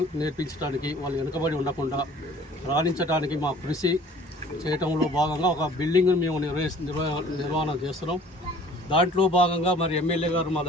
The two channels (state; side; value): normal; both; correlation 0.51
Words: నేర్పించడానికి, వాళ్ళు వెనుకబడి ఉండకుండా రాణించడానికి మా కృషి చేయటంలో భాగంగా ఒక బిల్డింగ్ను మేము నిర్వహణ చేస్తున్నాం. దాంట్లో భాగంగా మరి ఎమ్మెల్యే గారు మా